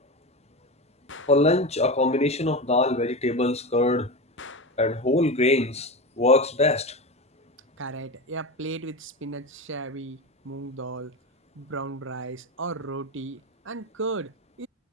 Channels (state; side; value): normal; both; correlation 0.22